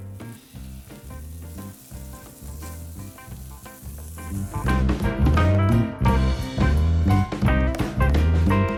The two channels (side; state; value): both; identical; correlation 1.00